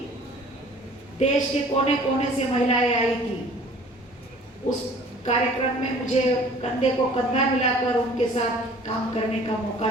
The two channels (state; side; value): normal; both; correlation 0.50